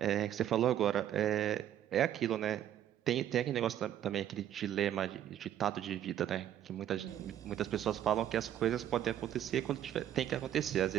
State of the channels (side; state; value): left; quieter; 11.1 dB